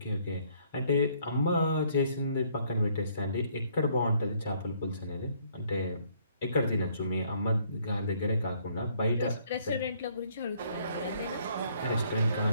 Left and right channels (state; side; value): inverted; both; correlation -0.65